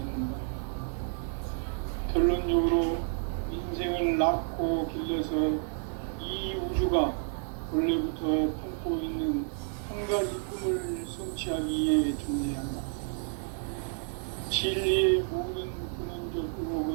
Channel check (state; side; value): silent; left; 57 dB below the other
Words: 결론적으로 인생을 낳고 길러서 이 우주가 원래부터 품고 있는 한 가지 꿈을 성취하기 위해 존재한다. 진리의 모든 근원적